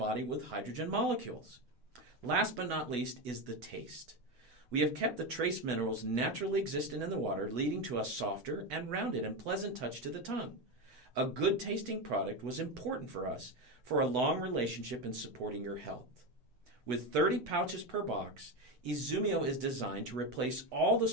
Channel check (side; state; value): left; late; 8.0 ms